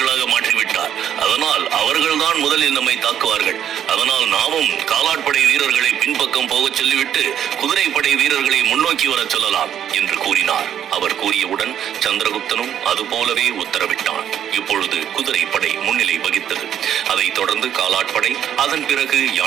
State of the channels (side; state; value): left; quieter; 9.8 dB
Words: மாற்றிவிட்டார். அதனால் அவர்கள்தான் முதலில் நம்மை தாக்குவார்கள். அதனால் நாமும் காலாட்படை வீரர்களை பின்பக்கம் போகச் சொல்லிவிட்டு குதிரைப்படை வீரர்களை முன்னோக்கி வர சொல்லலாம் என்று கூறினார். அவர் கூறியவுடன் சந்திரகுப்தனும் அதுபோலவே உத்தரவிட்டான். இப்பொழுது குதிரைப்படை முன்னிலை வகித்தது. அதைத் தொடர்ந்து காலாட்படை, அதன் பிறகு